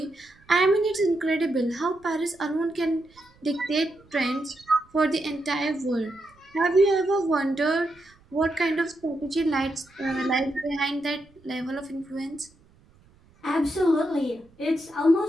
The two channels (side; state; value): right; noise; rumble, 30 dB below the sound